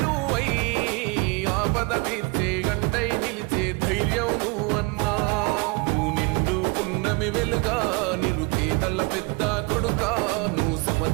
నువ్వై ఆపద తీర్చే గంటై నిలిచే ధైర్యం నువ్వన్నా నువ్వు నిండు పున్నమి వెలుగా నిరుపేదల పెద్ద కొడుకా నువ్వు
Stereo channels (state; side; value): quieter; left; 27.8 dB